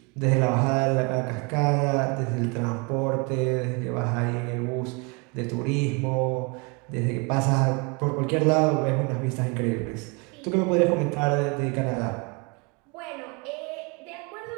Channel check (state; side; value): quieter; left; 30.8 dB